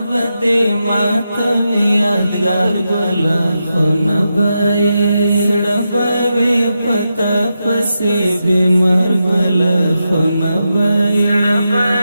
دې ماته یادګار ګل خونه به سړه به وي پتا پسې بیمار ګل خونه به سړه به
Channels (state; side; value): inverted; both; correlation -0.87